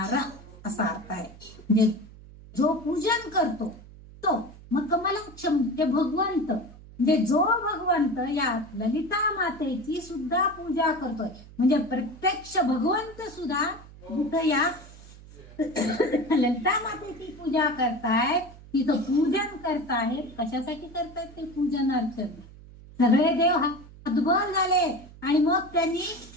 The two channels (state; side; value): noise; right; hum, 19 dB below the sound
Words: असा अर्थ आहे. म्हणजे जो पूजन करतो तो, मग कमलाक्ष म्हणजे भगवंत, म्हणजे जो भगवंत या ललिता मातेची सुद्धा पूजा करतोय, म्हणजे प्रत्यक्ष भगवंत सुद्धा जिथं या ललिता मातेची पूजा करतायत, तिथं पूजन करतायत. कशासाठी करतायत ते पूजन अर्चन? सगळे देव हतबल झाले आणि मग त्यांनी